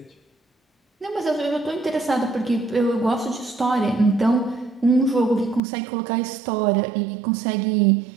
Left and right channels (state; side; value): drops out; left; at 5.6 s